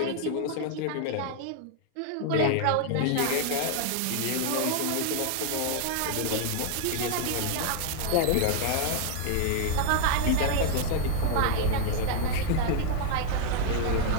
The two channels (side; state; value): both; different; correlation 0.00